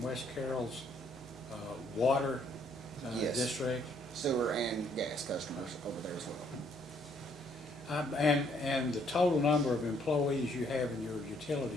Carroll's water Yes. district? Sewer and gas customers over there as well. And the total number of employees you have in your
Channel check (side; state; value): both; normal; correlation 0.67